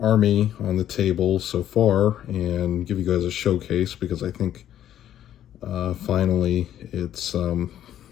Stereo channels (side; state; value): right; quieter; 11.3 dB